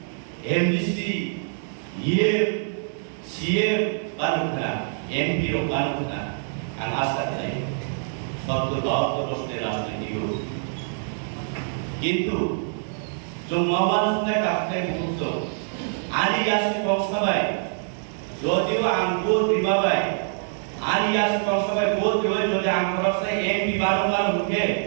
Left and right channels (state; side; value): silent; left; digital silence